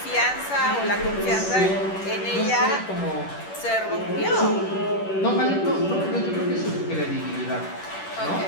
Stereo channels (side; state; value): right; late; 10 ms